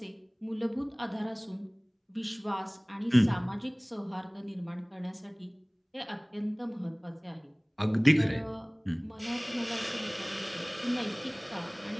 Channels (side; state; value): both; identical; correlation 1.00